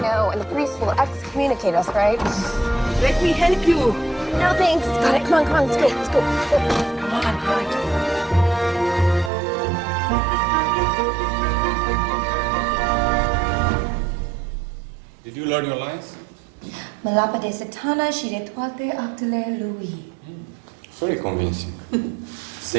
know, and the priest will excommunicate us, right? Let me help you. No thanks. Got it. Come on, let's go. Let's go. Come on, all right. Did you learn your lines? Mă lapă de satana și de toate actele lui. Very convincing.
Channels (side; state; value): left; drops out; at 9.3 s